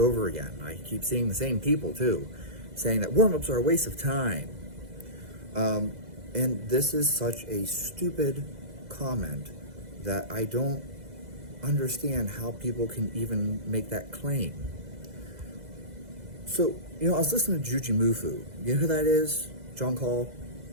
again. I keep seeing the same people too, saying that warm-ups are a waste of time. And this is such a stupid comment that I don't understand how people can even make that claim. So, you know, I was listening to Juji Mufu. You know who that is? John Call.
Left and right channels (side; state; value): left; late; 2.0 ms